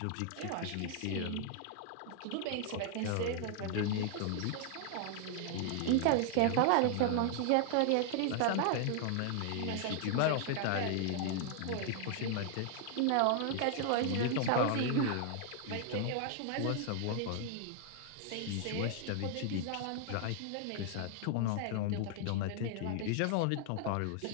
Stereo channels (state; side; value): different; both; correlation 0.00